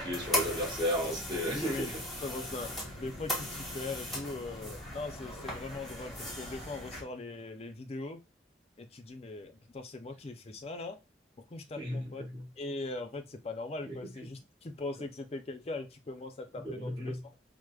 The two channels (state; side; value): normal; both; correlation 0.42